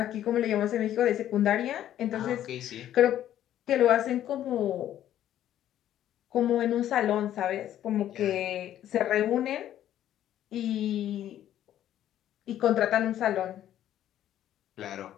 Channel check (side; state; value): right; quieter; 11.7 dB